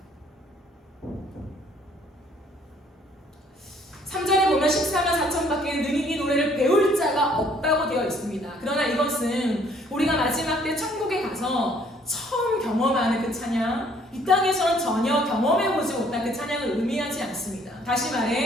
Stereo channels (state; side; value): normal; both; correlation 0.61